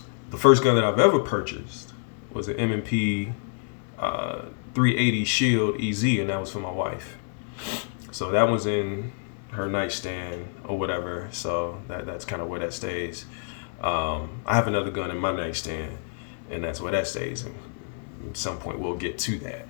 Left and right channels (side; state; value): right; silent; digital silence